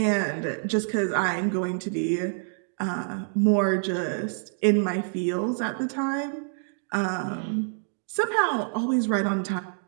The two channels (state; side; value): silent; left; digital silence